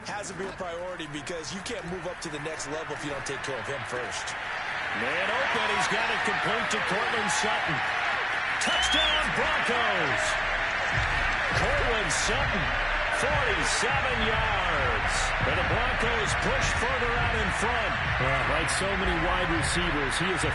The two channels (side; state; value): both; identical; correlation 1.00